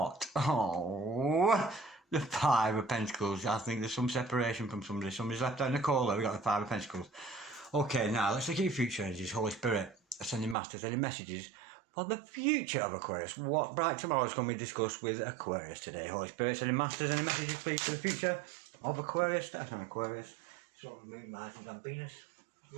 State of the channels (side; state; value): left; drops out; at 10.6 s